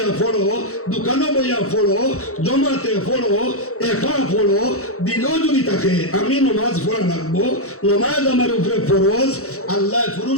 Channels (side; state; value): right; late; 0.64 ms